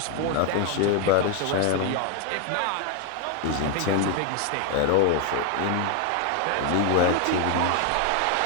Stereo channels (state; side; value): different; both; correlation 0.01